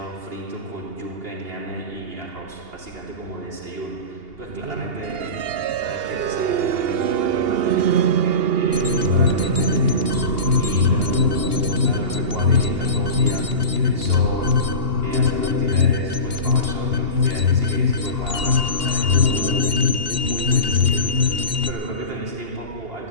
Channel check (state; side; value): late; left; 2.8 ms